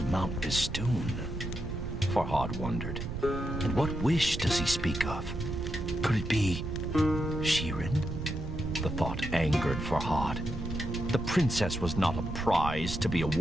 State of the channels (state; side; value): noise; right; rumble, 6 dB below the sound